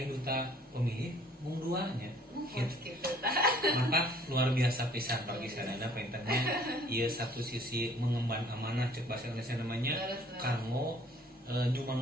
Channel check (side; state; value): both; normal; correlation 0.57